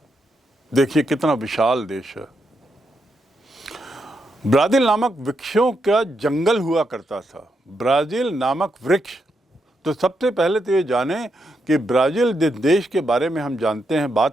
देखिए कितना विशाल देश है। ब्राज़ील नामक वृक्षों का जंगल हुआ करता था। ब्राज़ील नामक वृक्ष, तो सबसे पहले तो ये जाने कि ब्राज़ील जिस देश के बारे में हम जानते हैं,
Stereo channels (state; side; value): normal; both; correlation 0.82